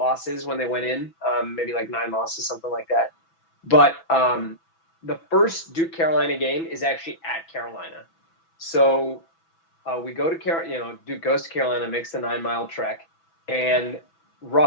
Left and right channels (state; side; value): late; right; 6.1 ms